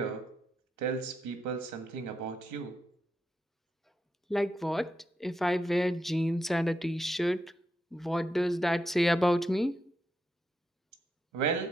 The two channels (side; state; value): both; normal; correlation 0.84